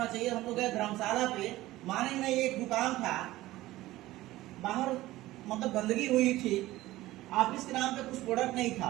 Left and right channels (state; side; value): quieter; left; 16.9 dB